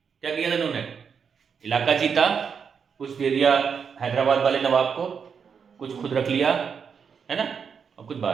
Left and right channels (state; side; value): quieter; left; 6.5 dB